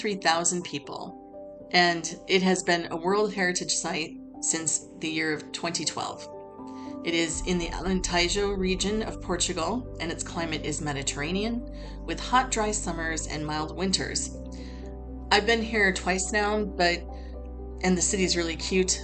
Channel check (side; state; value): both; identical; correlation 1.00